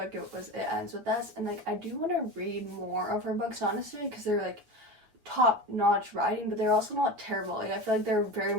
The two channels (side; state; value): left; late; 9.1 ms